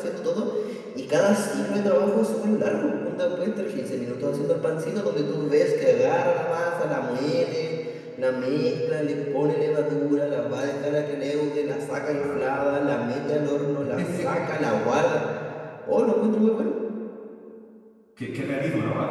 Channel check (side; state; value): both; identical; correlation 1.00